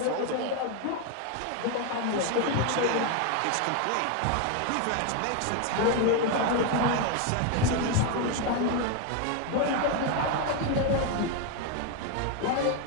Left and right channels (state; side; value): different; both; correlation 0.02